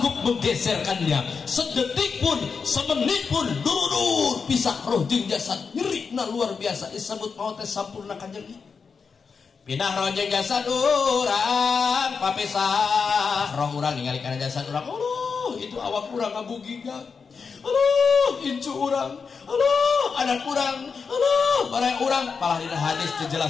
menggeserkannya sedetik pun, semenit pun durur pisah roh jeung jasad nyerina luar biasa disebut maut teh sampurna kanjeng pindah roh jeung jasad urang papisah roh urang ningali kana jasad urang itu awak urang ngabugigan incu urang anak urang barang urang palah dina hadis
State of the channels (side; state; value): right; quieter; 5.5 dB